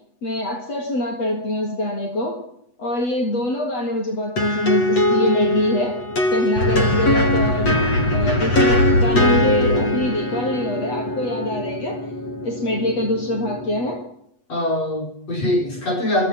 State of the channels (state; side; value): late; right; 8.2 ms